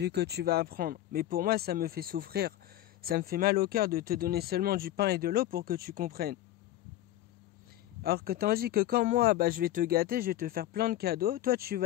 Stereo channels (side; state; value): right; quieter; 13.8 dB